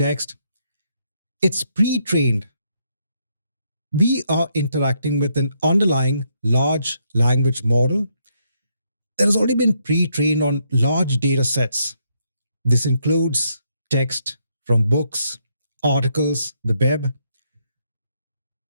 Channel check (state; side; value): inverted; both; correlation -0.75